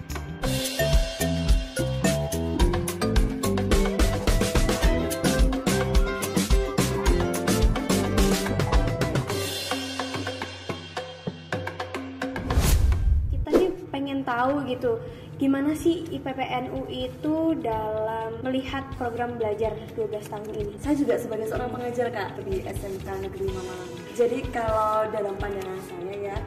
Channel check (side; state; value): both; identical; correlation 1.00